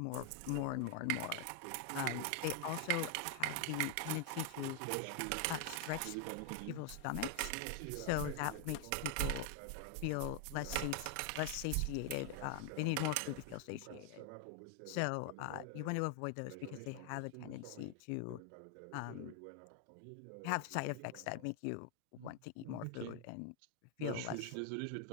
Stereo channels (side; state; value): both; different; correlation 0.00